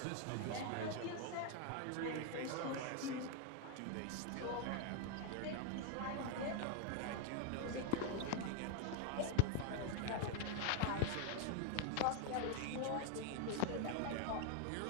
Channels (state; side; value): different; both; correlation 0.01